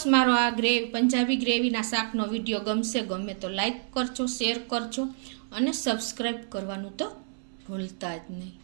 મારો આ પંજાબી ગ્રેવીના શાકનો વિડીયો ગમે તો લાઈક કરજો, શેર કરજો અને સબસ્ક્રાઈબ કરવાનું તો ભૂલતા જ નહીં.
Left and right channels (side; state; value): left; silent; 59 dB below the other